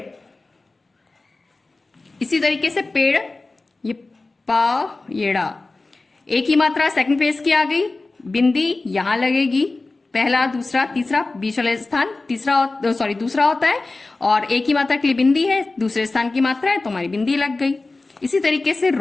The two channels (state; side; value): quieter; right; 3.4 dB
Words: इसी तरीके से पेड़, ये पा ये ड़ा, एक ही मात्रा सेकंड प्लेस की आ गई, बिंदी यहां लगेगी, पहला दूसरा तीसरा बीच वाला स्थान तीसरा सॉरी दूसरा होता है और एक ही मात्रा के लिए बिंदी है, दूसरे स्थान की मात्रा है तो हमारी बिंदी लग गई। इसी तरीके से